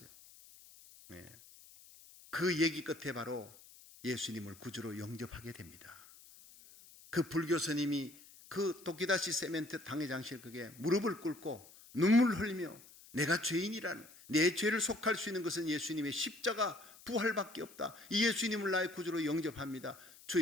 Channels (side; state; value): left; noise; hiss, 21 dB below the sound